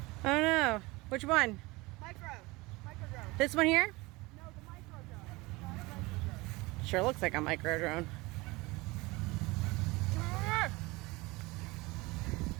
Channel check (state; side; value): quieter; left; 23.0 dB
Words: Oh no. Which one? Micro drone. This one here? No, the micro drone. Not the micro drone. Sure looks like a micro drone.